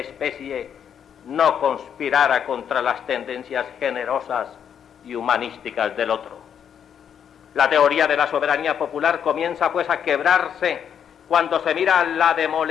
no conspirara contra las tendencias generosas y humanísticas del otro. La teoría de la soberanía popular comienza pues a quebrarse cuando se mira la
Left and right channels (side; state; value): right; quieter; 8.3 dB